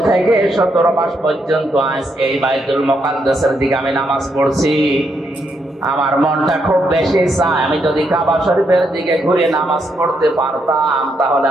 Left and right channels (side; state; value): both; normal; correlation 0.78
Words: থেকে 17 মাস পর্যন্ত আজ এই বাইতুল মুকাদ্দাসের দিকে আমি নামাজ পড়ছি। আমার মনটা খুব বেশি চায় আমি যদি কাবা শরীফের দিকে ঘুরে নামাজ পড়তে পারতাম তাহলে